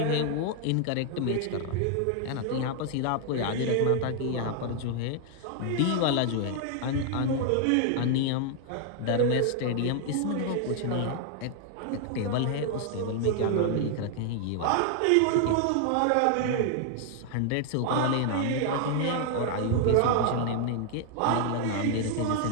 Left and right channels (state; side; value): different; both; correlation 0.00